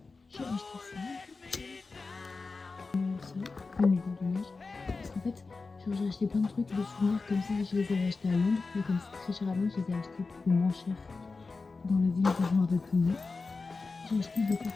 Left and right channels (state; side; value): quieter; right; 4.1 dB